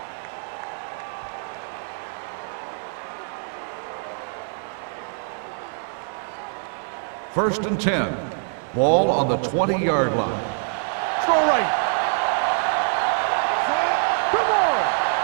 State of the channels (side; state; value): left; silent; 62 dB below the other